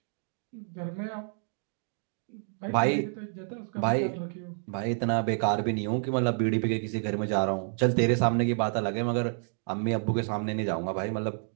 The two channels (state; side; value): silent; left; 58 dB below the other